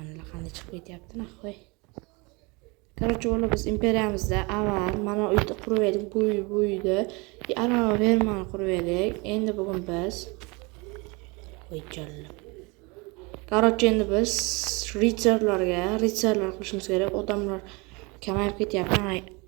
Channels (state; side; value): quieter; left; 27.6 dB